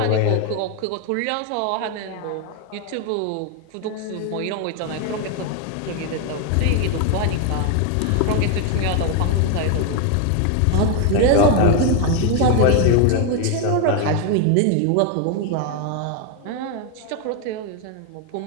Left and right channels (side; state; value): both; different; correlation 0.01